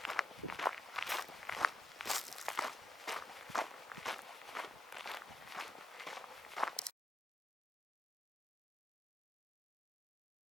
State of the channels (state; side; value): normal; both; correlation 0.82